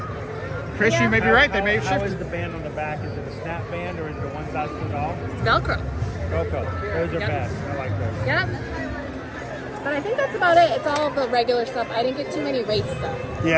Chris, you may be right. They may have How is shifted. the band on the back? Is it a snap band or is it a one size fits all? It's Velcro. Coco. Those are Yep. best. I like those. Yep. But I think that's about it. It's all the regular stuff. I didn't get too many race stuff.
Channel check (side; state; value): both; identical; correlation 1.00